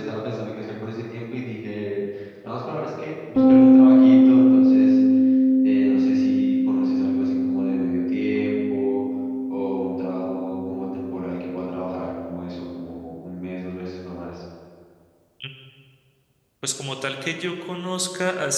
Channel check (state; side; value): identical; both; correlation 1.00